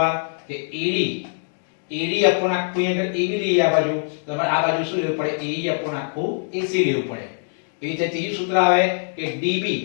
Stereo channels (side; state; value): right; silent; digital silence